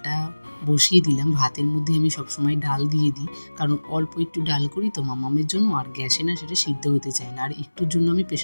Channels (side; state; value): both; inverted; correlation -1.00